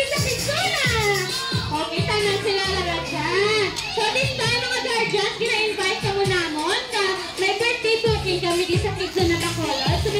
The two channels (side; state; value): both; identical; correlation 1.00